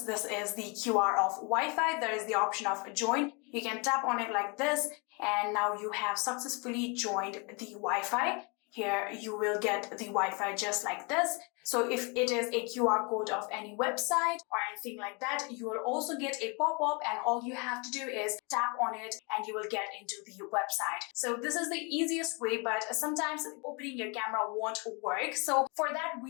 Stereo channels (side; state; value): right; quieter; 31.6 dB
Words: this is the QR of Wi-Fi, there is the option of join. You can tap on it like this, and now you have successfully joined the Wi-Fi. Here you will get the Wi-Fi just like this. So if it is a QR code of any website or anything like that, you will also get a pop-up, and all you have to do is tap on it and you will get into the website. So this is the easiest way, but sometimes opening your camera won't work. So for that,